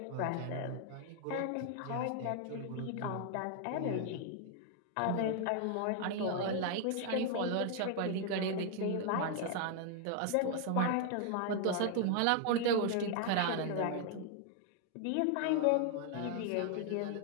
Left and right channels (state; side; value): different; both; correlation 0.00